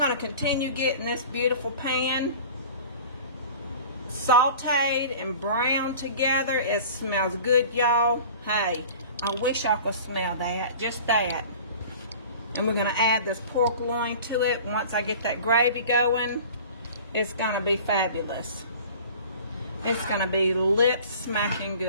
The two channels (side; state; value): both; inverted; correlation -0.42